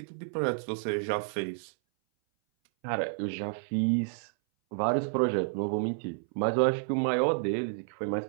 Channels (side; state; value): left; silent; 58 dB below the other